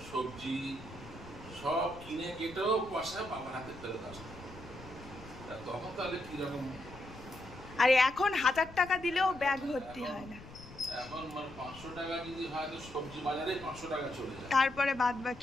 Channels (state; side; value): noise; left; rumble, 17 dB below the sound